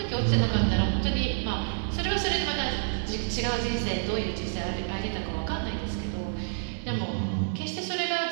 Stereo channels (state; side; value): silent; left; digital silence